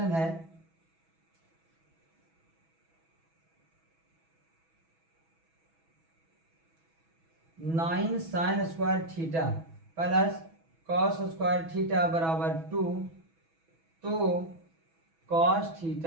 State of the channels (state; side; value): late; left; 6.1 ms